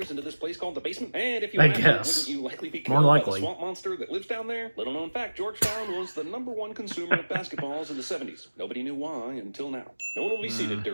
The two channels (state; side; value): inverted; both; correlation -1.00